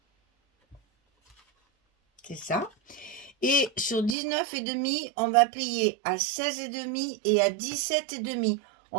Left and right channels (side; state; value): left; drops out; at 4.2 s